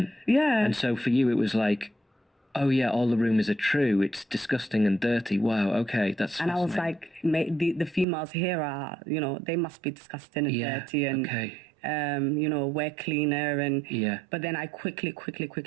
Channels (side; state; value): left; drops out; at 8.1 s